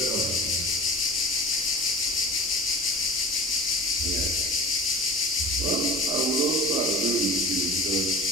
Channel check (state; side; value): normal; both; correlation 0.38